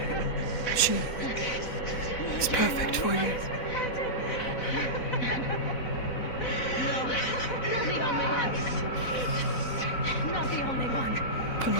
She is perfect for you.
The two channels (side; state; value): right; late; 4.0 ms